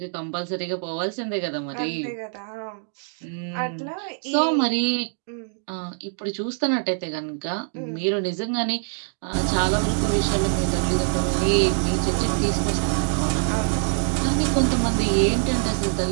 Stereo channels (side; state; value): left; silent; digital silence